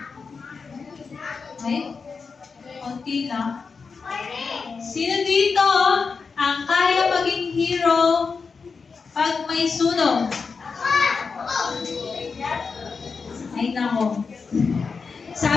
Okay? Konti lang. Sino dito ang kaya maging hero pag may sunog? Ay nako.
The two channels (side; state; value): right; quieter; 5.0 dB